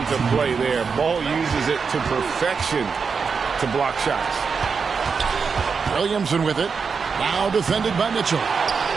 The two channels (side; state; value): left; quieter; 5.5 dB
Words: play there. Ball uses it to perfection to block shots. Williamson with it. Now defended by Mitchell.